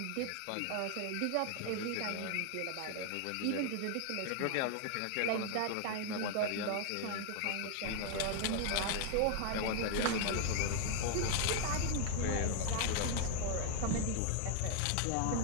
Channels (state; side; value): different; both; correlation 0.00